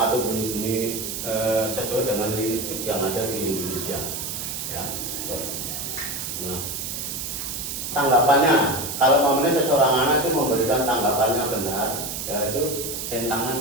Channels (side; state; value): right; noise; hiss, 5 dB below the sound